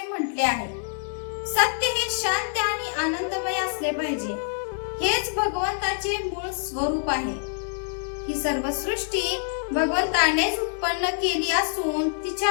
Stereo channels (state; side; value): silent; right; 61 dB below the other